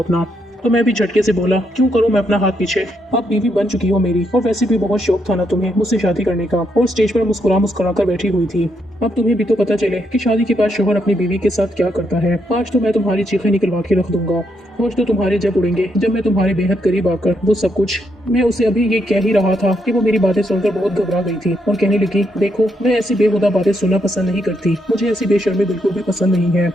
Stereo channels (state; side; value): normal; both; correlation 0.78